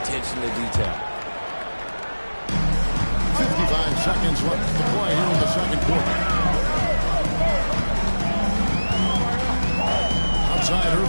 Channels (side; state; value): both; inverted; correlation -1.00